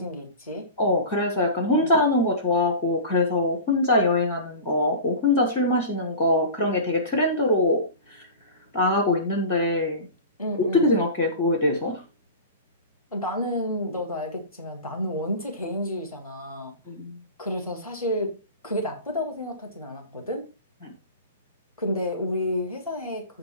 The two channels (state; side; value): inverted; both; correlation -0.33